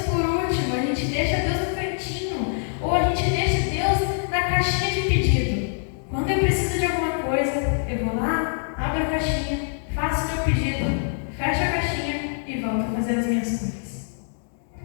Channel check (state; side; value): silent; right; digital silence